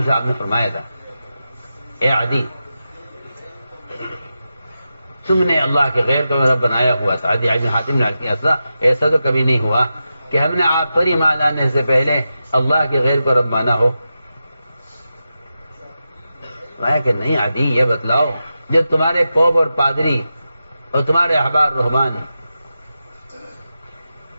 صاحب نے فرمایا تھا، اے عدی، تم نے اللہ کے غیر کو رب بنایا ہوا تھا۔ عدی بن حاتم نے کہا ایسا تو کبھی نہیں ہوا کہ ہم نے آپ پر ایمان لانے سے پہلے اللہ کے غیر کو رب مانا ہو۔ کہ نہیں عدی، یہ بتلاؤ جب تمہارے پوپ اور پادری اور تمہارے احبار رہبان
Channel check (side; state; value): both; inverted; correlation -0.90